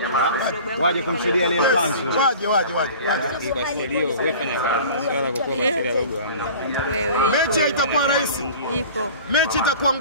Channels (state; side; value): inverted; both; correlation -0.41